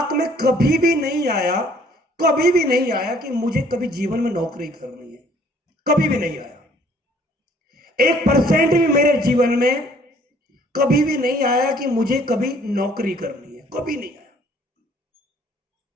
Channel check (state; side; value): normal; both; correlation 0.59